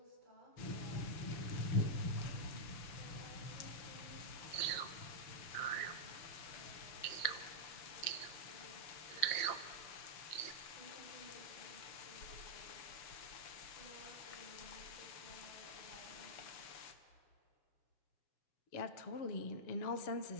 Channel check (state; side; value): late; right; 6.8 ms